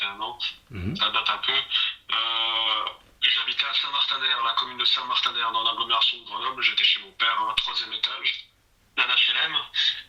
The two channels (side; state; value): both; identical; correlation 1.00